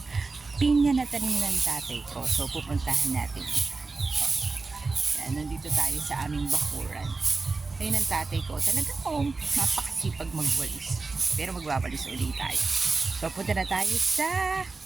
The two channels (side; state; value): left; quieter; 3.9 dB